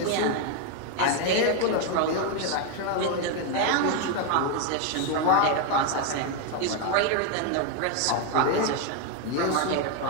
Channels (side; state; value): both; different; correlation 0.01